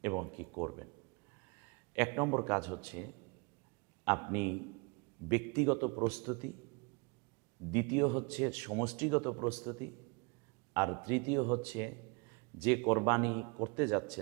এবং কি করবেন। এক নম্বর কাজ হচ্ছে আপনি ব্যক্তিগত প্রস্তুতি, দ্বিতীয় হচ্ছে সমষ্টিগত প্রস্তুতি, আর তৃতীয় হচ্ছে যে কোরবানি করতে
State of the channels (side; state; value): left; quieter; 30.7 dB